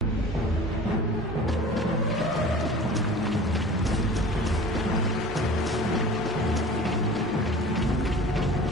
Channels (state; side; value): normal; both; correlation 0.41